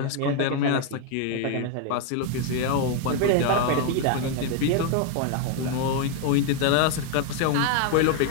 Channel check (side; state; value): both; different; correlation 0.01